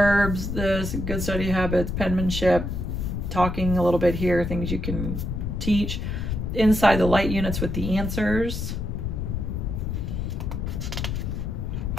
this, good study habits, penmanship, talking a little bit here, things you can teach. Inside the light units with the answers.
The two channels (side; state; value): left; noise; rumble, 3 dB below the sound